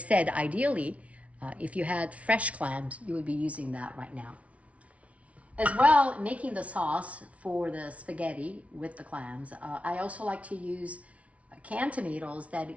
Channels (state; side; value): late; left; 0.065 ms